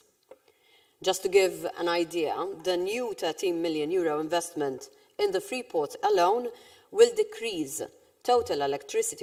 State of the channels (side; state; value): both; identical; correlation 1.00